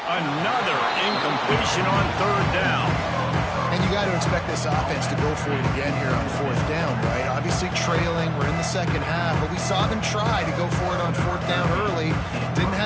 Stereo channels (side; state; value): both; identical; correlation 1.00